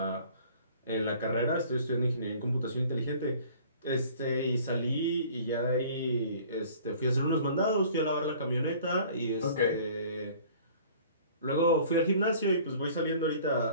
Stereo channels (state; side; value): inverted; both; correlation -0.50